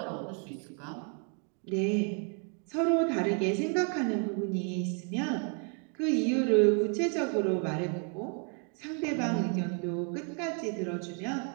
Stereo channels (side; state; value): left; quieter; 39.7 dB